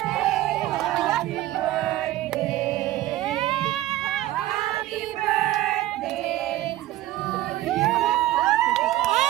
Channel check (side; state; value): left; quieter; 15.4 dB